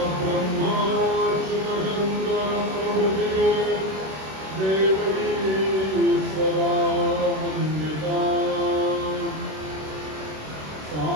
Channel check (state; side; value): late; left; 26 ms